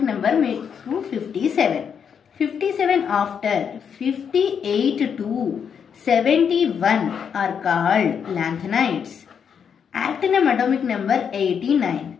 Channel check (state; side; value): quieter; right; 7.3 dB